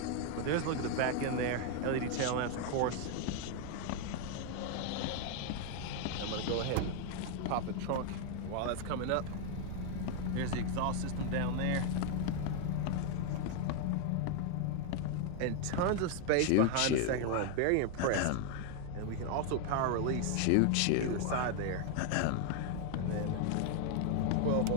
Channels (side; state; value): both; different; correlation 0.01